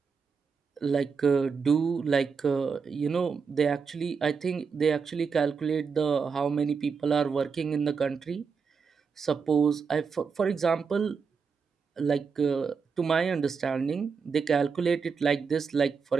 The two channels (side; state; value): left; quieter; 5.6 dB